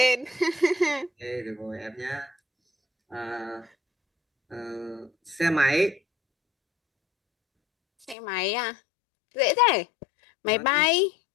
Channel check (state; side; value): drops out; right; at 8.2 s